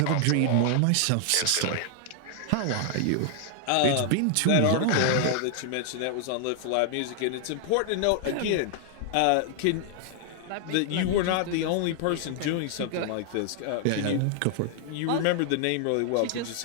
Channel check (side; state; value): both; different; correlation 0.00